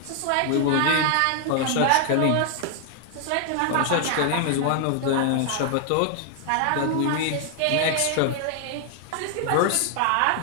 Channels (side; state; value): both; different; correlation 0.00